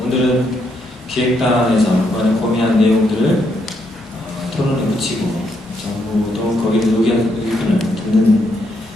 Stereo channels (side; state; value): both; normal; correlation 0.76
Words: 오늘은 기획단에서 이번에 고민한 내용들을 토론에 붙이고 정부도 거기에 의견을 듣는